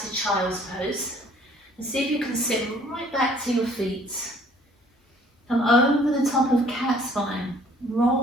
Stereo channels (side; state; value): both; normal; correlation 0.57